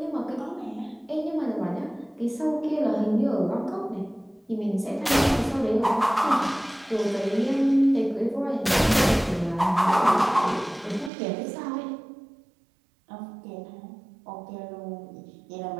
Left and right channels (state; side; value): drops out; left; at 11.1 s